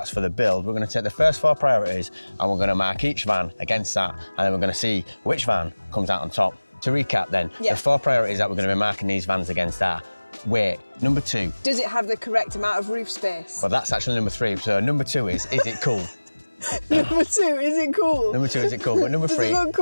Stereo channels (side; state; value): both; inverted; correlation -1.00